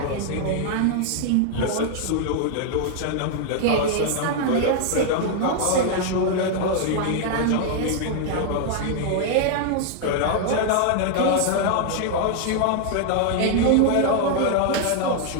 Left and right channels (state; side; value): different; both; correlation 0.00